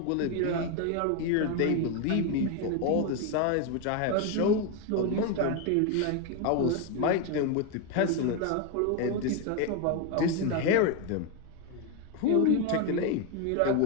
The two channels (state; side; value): different; both; correlation 0.02